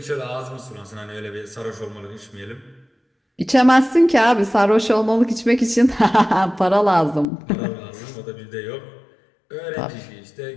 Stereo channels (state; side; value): drops out; right; at 7.2 s